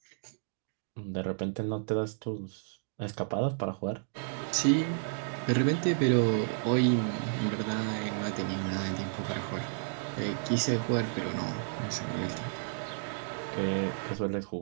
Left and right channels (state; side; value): silent; left; digital silence